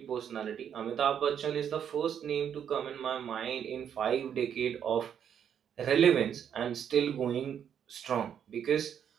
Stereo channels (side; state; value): left; quieter; 8.6 dB